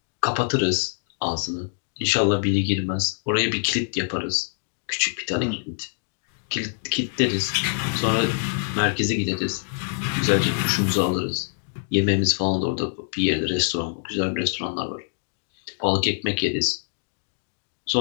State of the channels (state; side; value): silent; right; digital silence